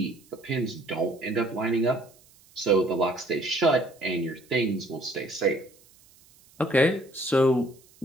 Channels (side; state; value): right; noise; hiss, 28 dB below the sound